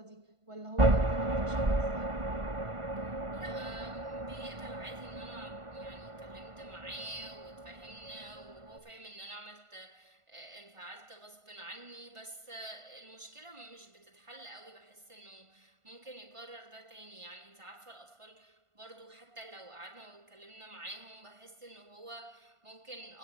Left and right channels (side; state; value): left; late; 1.5 ms